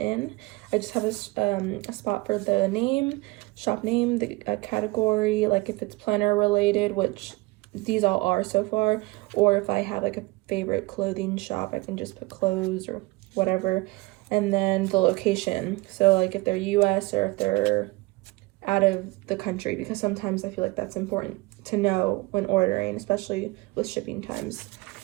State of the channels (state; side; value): quieter; left; 22.8 dB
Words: I just have a spot for the name, shop name, the category, like if it's planner related, which these all are so far, or if I have like a favorite clothing shop, I can just put clothes or whatever. And then the location, so like if they're US or if they're out of the country, because sometimes I feel like that's important to know when ordering, especially with shipping times.